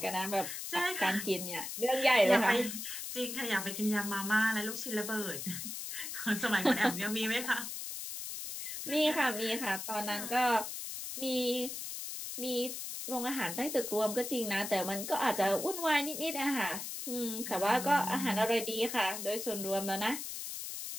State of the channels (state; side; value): noise; left; hiss, 6 dB below the sound